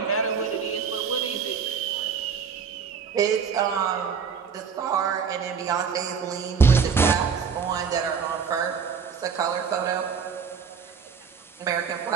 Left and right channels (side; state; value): left; quieter; 6.4 dB